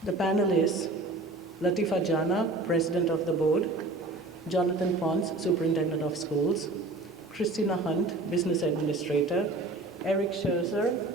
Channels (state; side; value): quieter; left; 3.0 dB